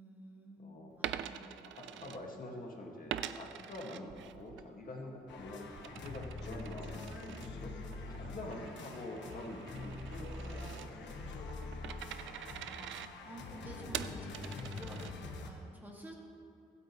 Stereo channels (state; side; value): normal; both; correlation 0.49